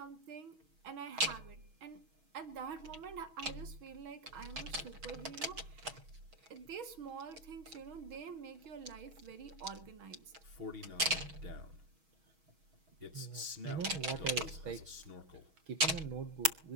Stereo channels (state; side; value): late; left; 6.3 ms